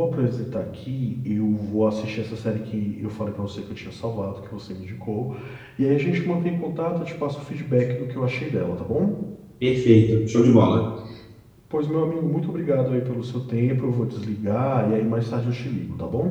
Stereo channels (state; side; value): identical; both; correlation 1.00